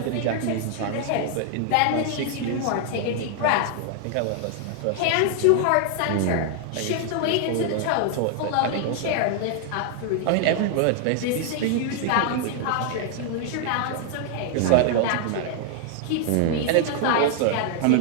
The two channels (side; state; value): both; different; correlation 0.00